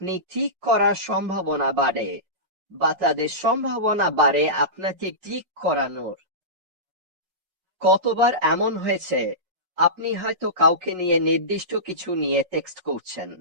ক্লিক করার সম্ভাবনা বাড়ে, বা তাদের সম্ভাবনা বাড়ে আপনাকে ক্লিক করানোর। কতবার এমন হয়েছে, আপনি হয়তো কাউকে নিয়ে নির্দিষ্ট কিছু নিয়ে টেক্সট করছেন।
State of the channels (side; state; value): left; late; 5.5 ms